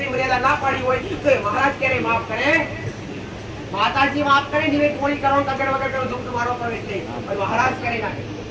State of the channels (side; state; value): both; identical; correlation 1.00